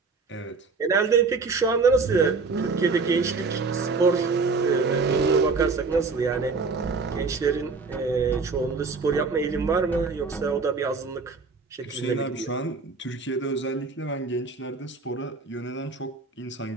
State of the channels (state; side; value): quieter; left; 4.3 dB